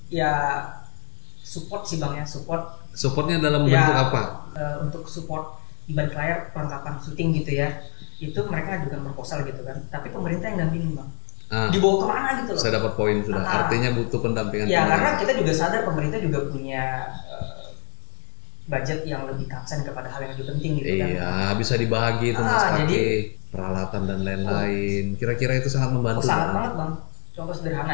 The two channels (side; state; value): right; silent; 56 dB below the other